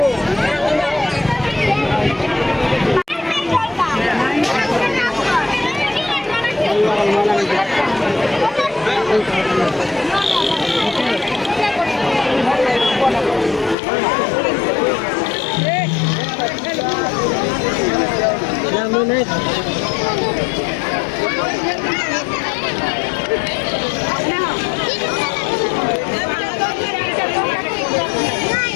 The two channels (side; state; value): right; drops out; at 13.8 s